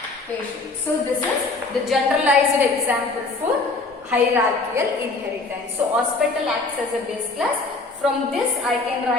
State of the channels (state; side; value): quieter; right; 3.5 dB